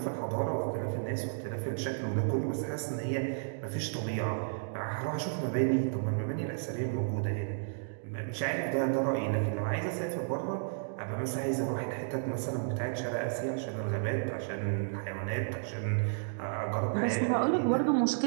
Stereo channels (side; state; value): left; silent; digital silence